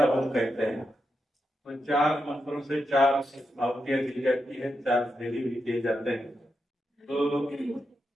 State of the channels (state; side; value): normal; both; correlation 0.86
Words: होम कहते हैं। तो 4 मंत्रों से 4 आहुतियां दी जाती है, 4 विधि भी किए जाते हैं। तो